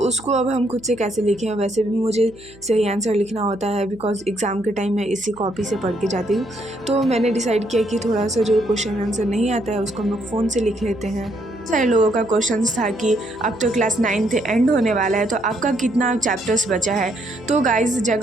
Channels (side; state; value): right; noise; hum, 24 dB below the sound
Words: अब हम खुद से कैसे लिखें। वैसे भी मुझे सही आंसर लिखना होता है बिकॉज एग्ज़ाम के टाइम मैं इसी कॉपी से पढ़ के जाती हूँ। तो मैंने डिसाइड किया कि थोड़ा सा जो क्वेश्चन आंसर नहीं आता है उसको हम लोग फ़ोन से लिख लेते हैं। सारे लोगों का क्वेश्चन था कि अब तो क्लास 9th एंड होने वाला है तो आपका कितना चैप्टर्स बचा है। तो गाइस